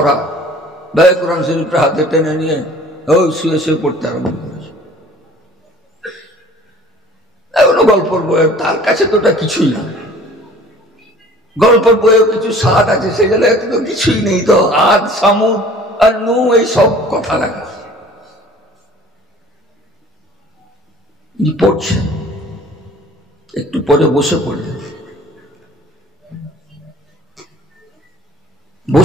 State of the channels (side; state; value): both; normal; correlation 0.48